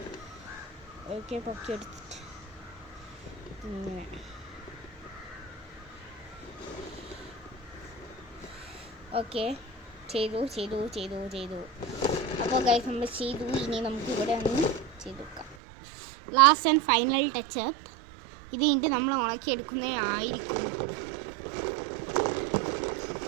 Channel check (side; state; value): left; drops out; at 15.6 s